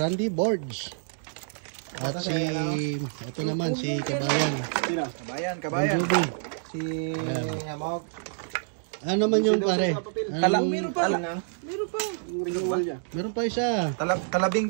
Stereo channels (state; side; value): silent; left; digital silence